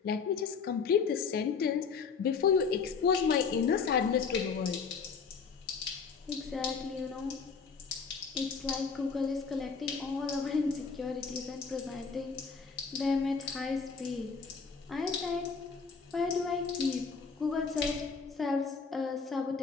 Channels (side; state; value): right; quieter; 5.4 dB